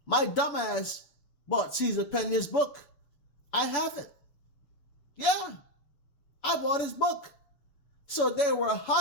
My dumbass bought Cesar Pina's book. I have it. Yeah, I bought his book. So they were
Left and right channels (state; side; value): late; right; 7.0 ms